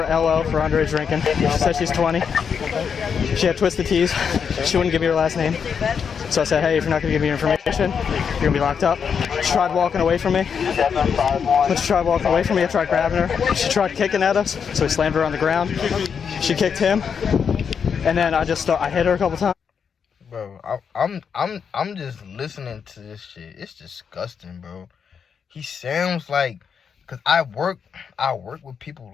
LO, for underage drinking. She said she's 20. She had twisted tees. She wouldn't give me her last name. So I said, hey, if you're not going to give me your information, you're going to be locked up. She tried walking away from me. When she tried walking away from me, I tried grabbing her. She tried kicking at us, so we slammed her on the ground. She kicked him, and then I hit her a couple times. Bro, I'm just listening to this shit. It's disgusting, bro. He sounds like, cause I work with people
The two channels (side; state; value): right; quieter; 6.7 dB